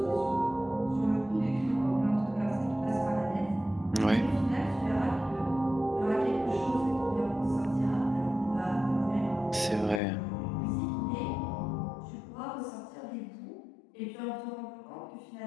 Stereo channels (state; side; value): drops out; right; at 10.0 s